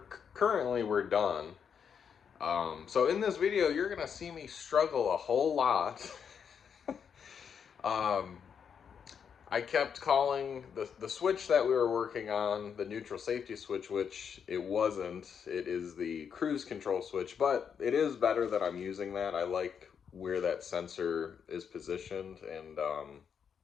done. So in this video, you're gonna see me struggle a whole lot. um, I kept calling the switch that we were working on the neutral safety switch, which it wasn't. It is the cruise control switch, but it is better that I'm using that. I like where that sensor is positioned, and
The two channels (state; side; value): quieter; right; 7.2 dB